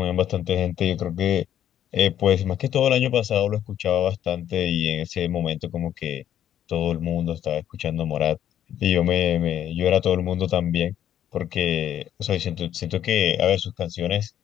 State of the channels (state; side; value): quieter; right; 10.6 dB